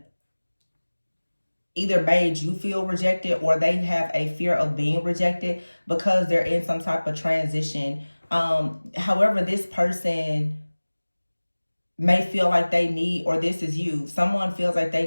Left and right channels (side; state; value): both; inverted; correlation -1.00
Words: either made you feel rejected or they have a fear of being rejected because they're in some type of transition. However, this person may feel like they need, or this is you, someone feels like they